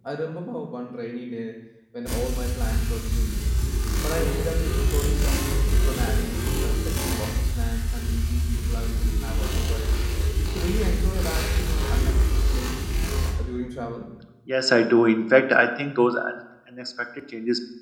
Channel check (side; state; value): both; identical; correlation 1.00